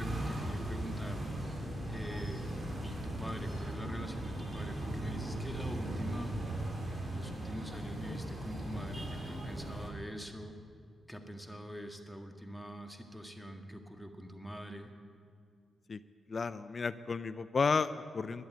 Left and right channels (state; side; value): normal; both; correlation 0.86